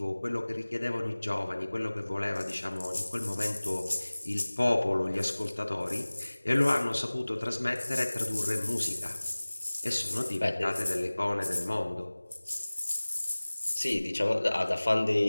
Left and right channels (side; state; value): both; inverted; correlation -1.00